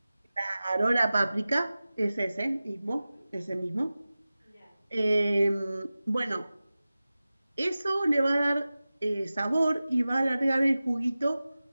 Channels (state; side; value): inverted; both; correlation -0.96